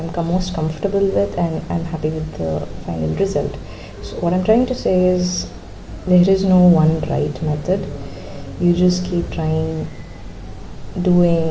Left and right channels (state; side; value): identical; both; correlation 1.00